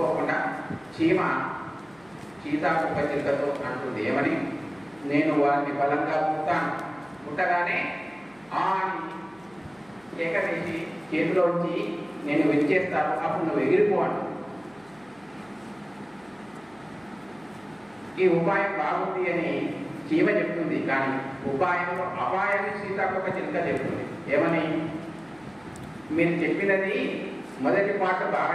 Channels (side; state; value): right; noise; hum, 28 dB below the sound